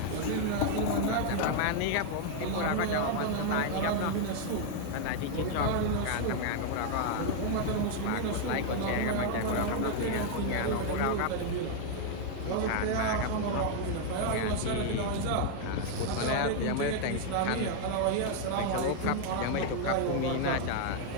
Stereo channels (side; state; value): both; different; correlation 0.00